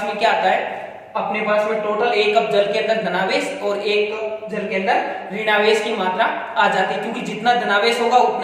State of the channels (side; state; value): both; identical; correlation 1.00